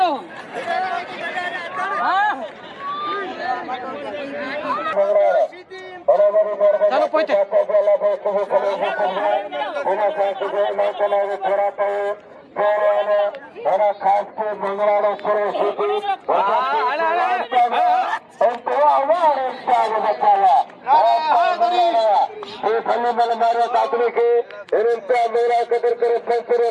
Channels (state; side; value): identical; both; correlation 1.00